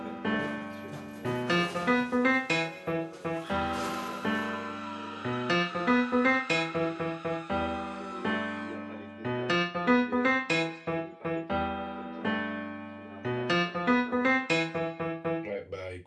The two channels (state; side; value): identical; both; correlation 1.00